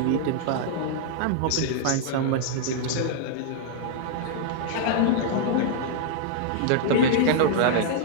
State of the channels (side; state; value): both; different; correlation -0.01